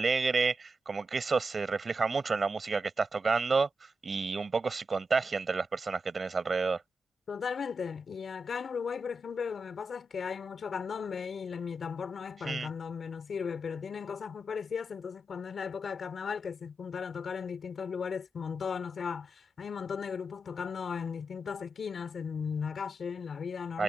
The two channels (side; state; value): both; normal; correlation 0.87